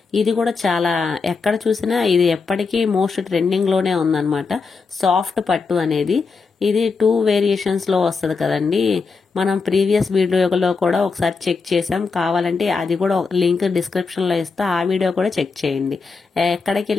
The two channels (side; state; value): right; quieter; 4.7 dB